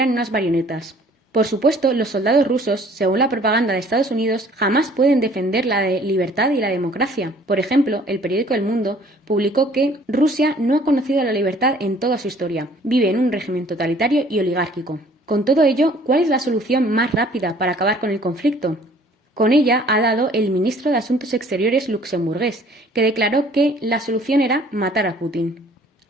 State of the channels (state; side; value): normal; both; correlation 0.55